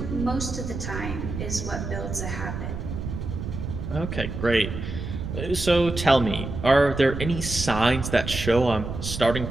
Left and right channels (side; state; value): right; noise; rumble, 6 dB below the sound